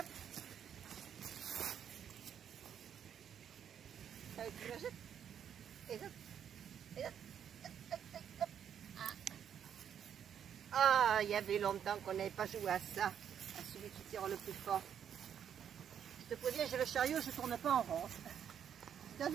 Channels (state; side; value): quieter; left; 8.7 dB